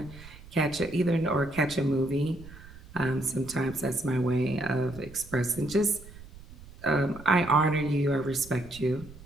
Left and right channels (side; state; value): right; noise; rumble, 18 dB below the sound